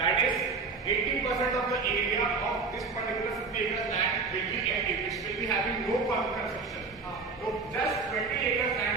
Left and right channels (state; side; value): quieter; left; 4.4 dB